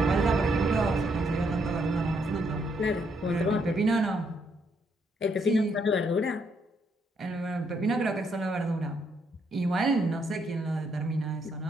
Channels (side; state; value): both; normal; correlation 0.74